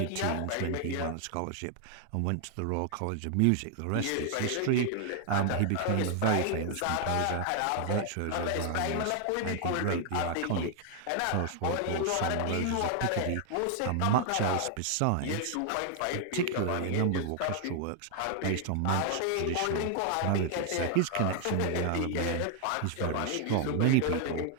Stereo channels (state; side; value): different; both; correlation 0.00